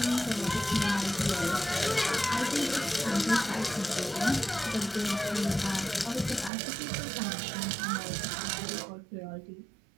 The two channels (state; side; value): drops out; left; at 6.5 s